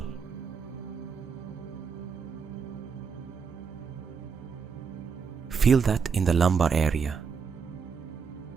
Feel that in the lumbar area.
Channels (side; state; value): left; quieter; 6.0 dB